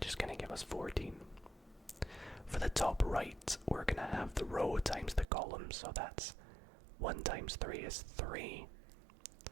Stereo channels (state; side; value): drops out; left; at 5.2 s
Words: is going to give us 14. For the top right, we're going to have the row times the column. So that's 1 times 3 is 3.